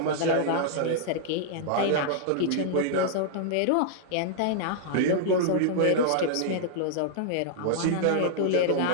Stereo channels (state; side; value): different; both; correlation -0.01